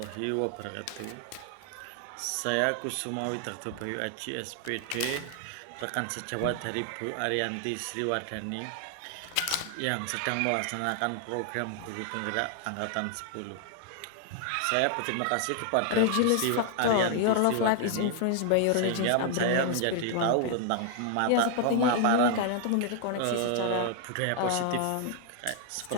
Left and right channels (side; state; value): both; different; correlation 0.00